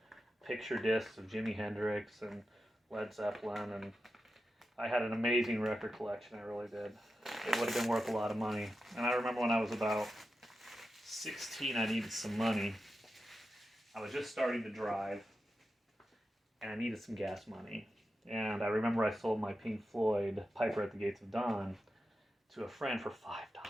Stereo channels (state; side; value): normal; both; correlation 0.90